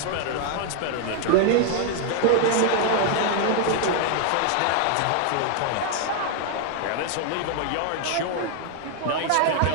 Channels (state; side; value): different; both; correlation 0.00